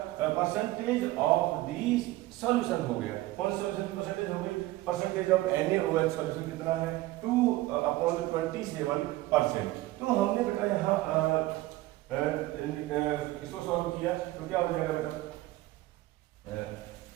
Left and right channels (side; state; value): left; quieter; 17.6 dB